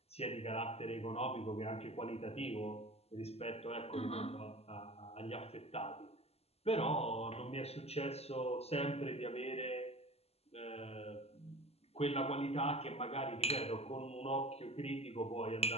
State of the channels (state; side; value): late; right; 0.29 ms